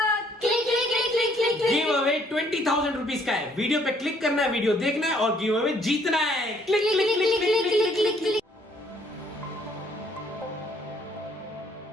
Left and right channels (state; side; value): normal; both; correlation 0.64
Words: click click click click click click. Give away 20,000 rupees का है। वीडियो पे क्लिक करना है, वीडियो देखना है और गिव अवे जीतना है। Click click click click click click click click.